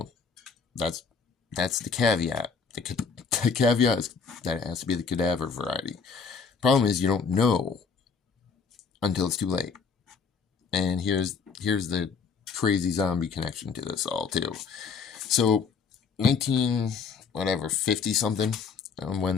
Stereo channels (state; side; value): quieter; right; 5.5 dB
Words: that's the caveat. The caveat is that it has to be the cadaver variety. Problem is, you don't know until it's too late. And here's the crazy zombie connection to this all too. So 50 something, when